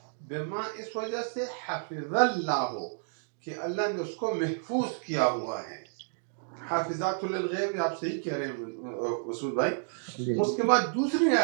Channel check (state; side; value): silent; left; digital silence